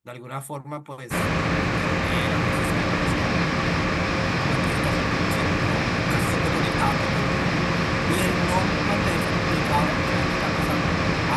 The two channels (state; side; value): identical; both; correlation 1.00